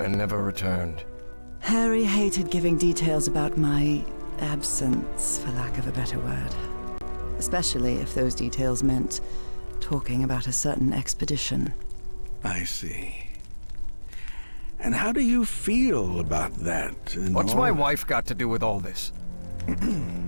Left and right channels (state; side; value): inverted; both; correlation -1.00